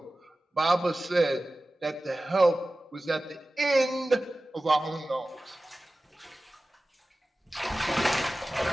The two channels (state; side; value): normal; both; correlation 0.96